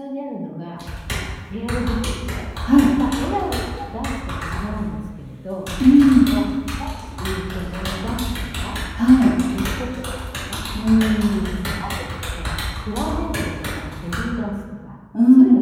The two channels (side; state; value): both; identical; correlation 1.00